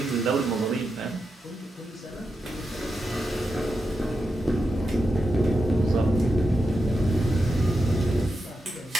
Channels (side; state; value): both; normal; correlation 0.87